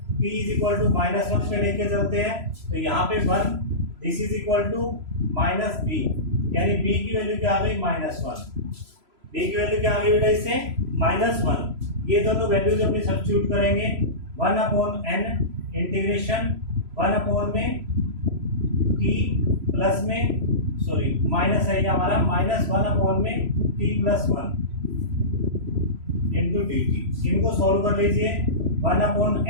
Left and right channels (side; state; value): left; late; 3.0 ms